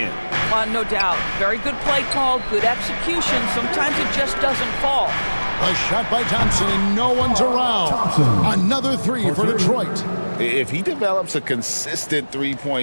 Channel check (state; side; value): inverted; both; correlation -1.00